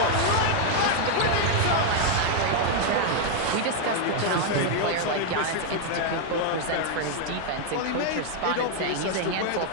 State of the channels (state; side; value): different; both; correlation 0.00